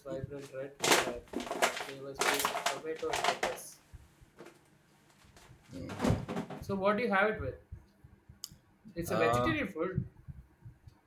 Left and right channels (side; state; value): both; identical; correlation 1.00